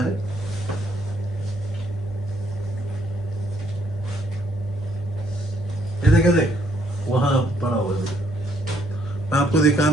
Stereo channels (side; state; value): both; normal; correlation 0.69